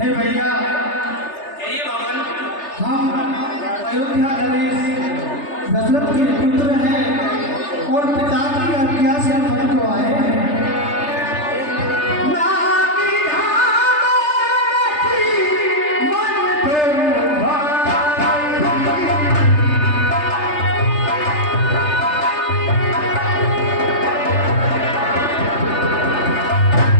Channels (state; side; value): late; right; 3.3 ms